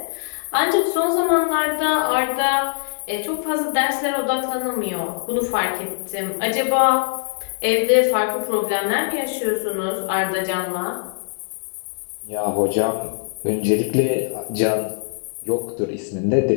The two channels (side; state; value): right; silent; digital silence